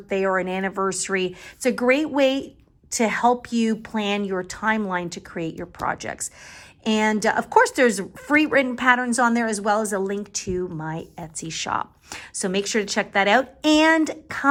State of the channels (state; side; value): identical; both; correlation 1.00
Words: or an anniversary, it's a great way to help you plan your timeline to create your projects. And of course, there's free written patterns on there as well as a link to my Etsy shop. So make sure to check that out and